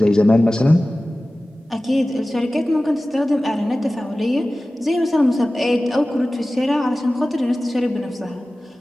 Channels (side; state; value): both; normal; correlation 0.97